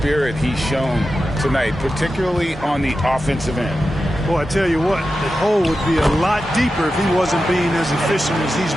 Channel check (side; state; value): both; normal; correlation 0.91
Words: he's shown tonight, particularly on the offensive end. Boy, I tell you what, the hole would be a lot deeper if he wasn't being as efficient as he's